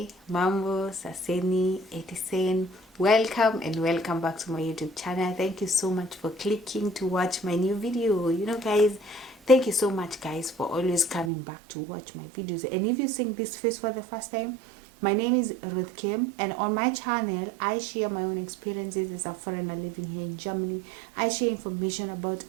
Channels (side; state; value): left; drops out; at 11.3 s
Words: Mambo, Saseni, Etisen, welcome and welcome back to my YouTube channel. Thank you so much for clicking to watch my new video. Guys, thank you so much guys for always coming back to watch my videos. And if you're seeing this face for the first time, my name is Ruth Kim, and on my channel I share my own experiences as a foreigner living here in Germany. I share information about